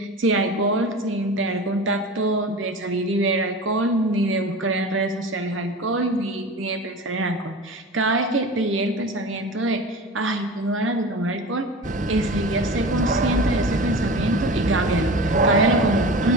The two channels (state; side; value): normal; both; correlation 0.33